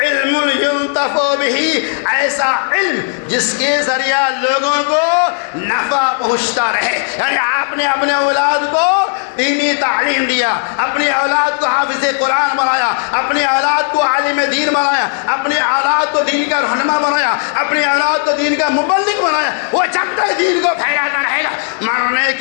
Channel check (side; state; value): right; silent; digital silence